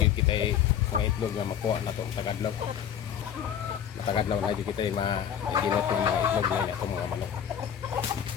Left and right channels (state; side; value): quieter; right; 9.1 dB